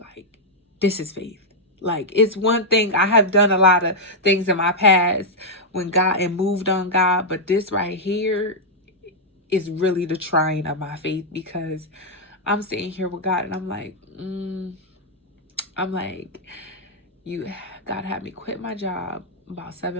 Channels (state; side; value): normal; both; correlation -0.04